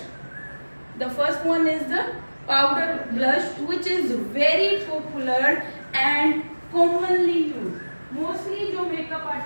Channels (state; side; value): inverted; both; correlation -1.00